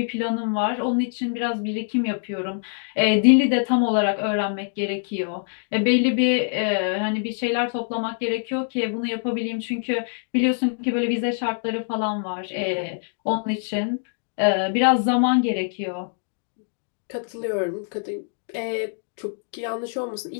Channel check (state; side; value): silent; right; digital silence